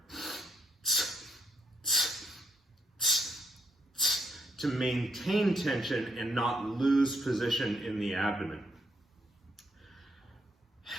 to maintain tension and not lose position in the abdomen.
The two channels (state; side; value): normal; both; correlation 0.73